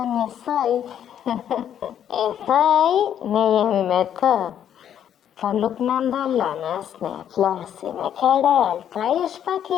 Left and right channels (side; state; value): right; quieter; 9.8 dB